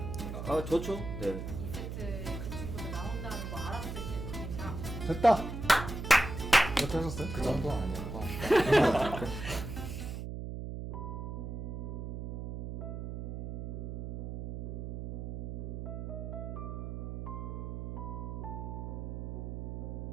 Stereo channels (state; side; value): noise; right; hum, 5 dB below the sound